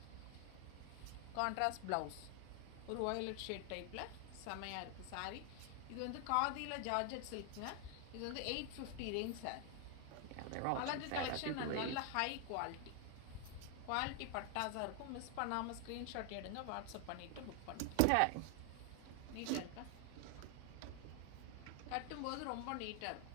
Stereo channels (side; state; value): both; different; correlation 0.00